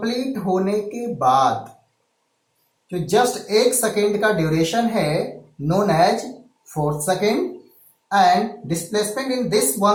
होने के बाद जो जस्ट 1 सेकेंड का ड्यूरेशन है known as fourth second, and displacement in this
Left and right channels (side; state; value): both; identical; correlation 1.00